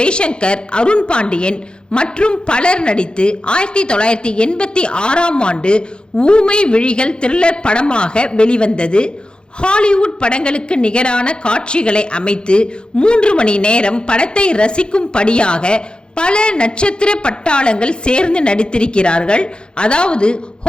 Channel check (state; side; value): late; right; 0.050 ms